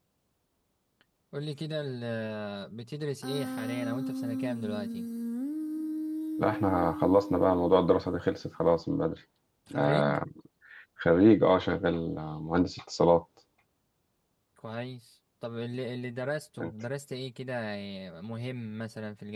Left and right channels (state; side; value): identical; both; correlation 1.00